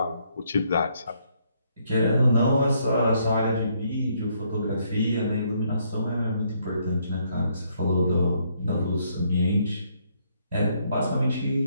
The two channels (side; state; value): both; inverted; correlation -0.71